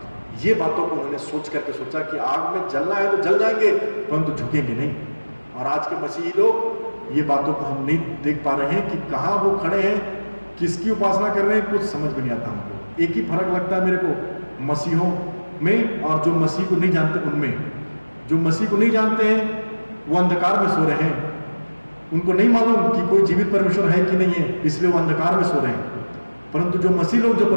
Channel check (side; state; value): both; inverted; correlation -1.00